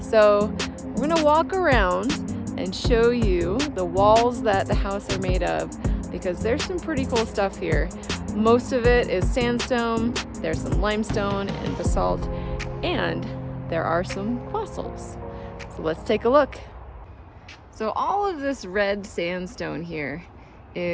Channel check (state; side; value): identical; both; correlation 1.00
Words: we're going to walk around and show you the walls that the house are made of because there's some pretty cool stuff here. Most of it is sandstone, there's some limestone and basalt, and there are some fossils. So let's take a look. So all of this red sandstone here